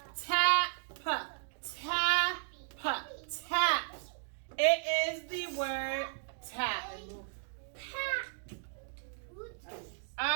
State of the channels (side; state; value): left; silent; digital silence